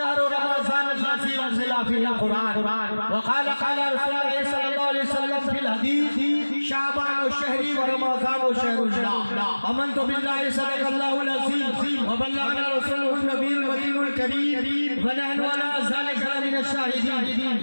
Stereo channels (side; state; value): both; inverted; correlation -1.00